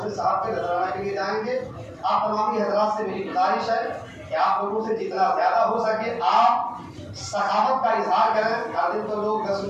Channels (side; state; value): both; identical; correlation 1.00